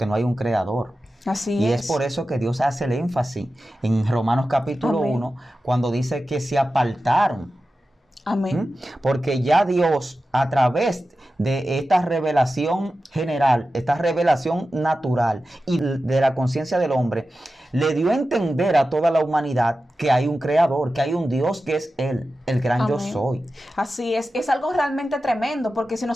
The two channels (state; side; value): normal; both; correlation 0.93